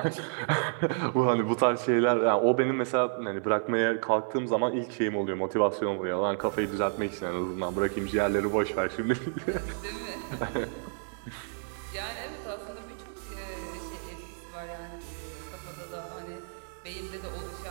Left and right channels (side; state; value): left; silent; 58 dB below the other